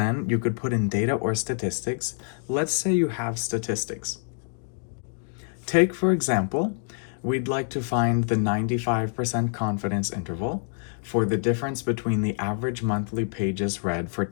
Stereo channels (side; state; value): right; silent; digital silence